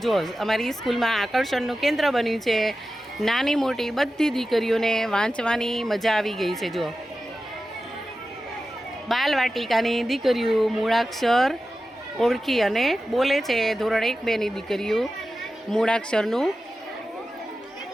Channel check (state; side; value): normal; both; correlation 0.93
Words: જો અમારી સ્કૂલમાં આકર્ષણનું કેન્દ્ર બન્યું છે. નાની મોટી બધી દીકરીઓને વાંચવાની મજા આવી ગઈ છે. જો બાલવાટિકાની દીકરીઓ મૂળાક્ષર ઓળખી અને બોલે છે. ધોરણ 1-2ની દીકરીઓ મૂળાક્ષરનું